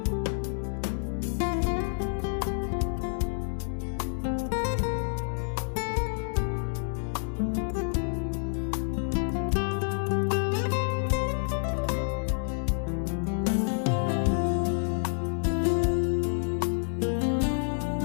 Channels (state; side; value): silent; right; digital silence